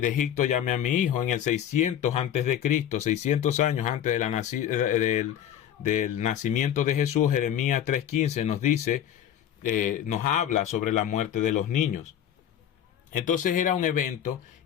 Egipto llamé a mi hijo, en el 600 antes de Cristo, 600 años antes de del nacimiento de Jesús. Jeremías 3:15 nos dice, nos habla sobre la muerte de los niños. Entonces era un evento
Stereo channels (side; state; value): right; quieter; 10.1 dB